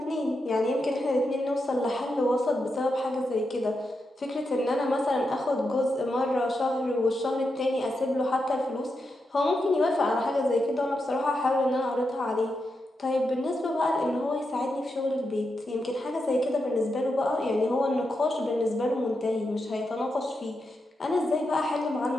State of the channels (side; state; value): both; normal; correlation 0.86